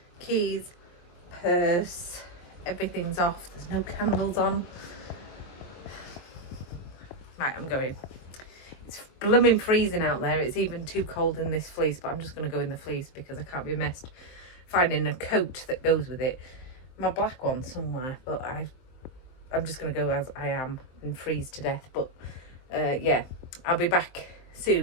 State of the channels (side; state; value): right; late; 23 ms